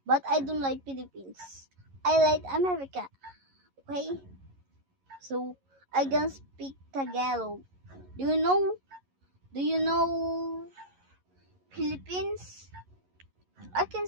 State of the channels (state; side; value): late; left; 11 ms